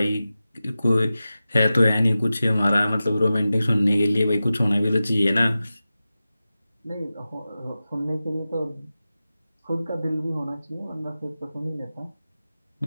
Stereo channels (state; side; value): inverted; both; correlation -0.94